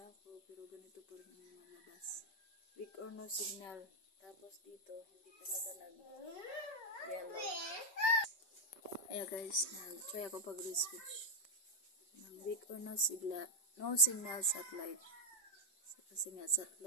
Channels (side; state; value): right; late; 5.2 ms